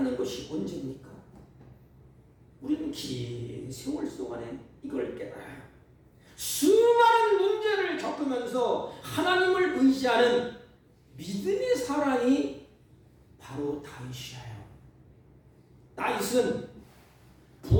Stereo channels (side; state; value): both; identical; correlation 1.00